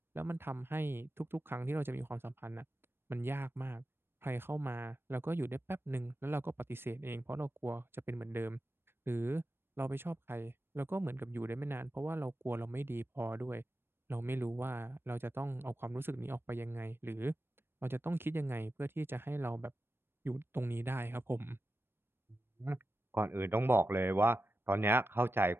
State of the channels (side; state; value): left; late; 0.11 ms